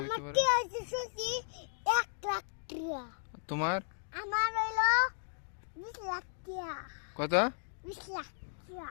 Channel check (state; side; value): silent; right; digital silence